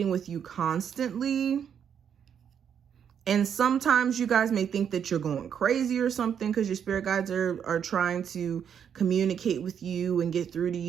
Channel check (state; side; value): quieter; left; 8.1 dB